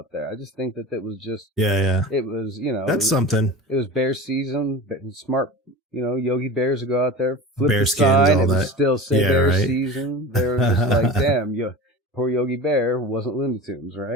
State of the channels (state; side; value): normal; both; correlation 0.33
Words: there. I just think that it was just... Yeah. It was, That's something. It was bear season. Smart, Yogi Bears would go out there, flip bear the skins, sign, all and that. Still say bear season. They were just like, damn, poor Yogi Bear wasn't Looney Tunes,